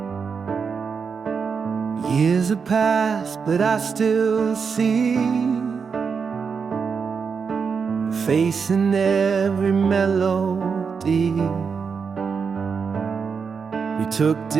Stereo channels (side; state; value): left; quieter; 5.8 dB